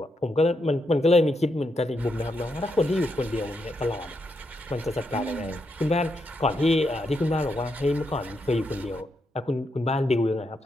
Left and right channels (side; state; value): both; normal; correlation 0.82